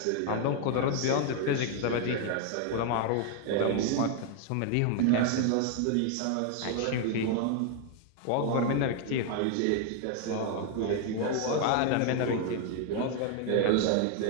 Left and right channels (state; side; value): different; both; correlation 0.00